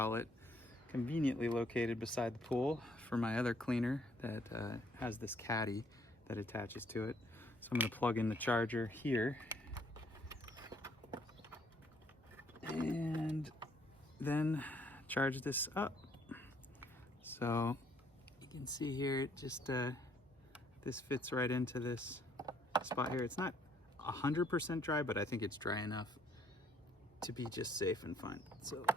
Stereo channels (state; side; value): normal; both; correlation 0.65